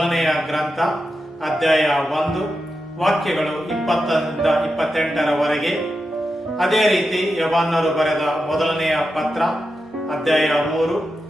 ಗ್ರಂಥ ಅಧ್ಯಾಯ 1 ವಾಕ್ಯಗಳು 20ರಿಂದ 28ರವರೆಗೆ. ಅದೇ ರೀತಿ ಯವನ್ನರು ಬರೆದ ಮೊದಲನೆಯ ಪತ್ರ ಅಧ್ಯಾಯ 3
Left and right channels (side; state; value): both; normal; correlation 0.89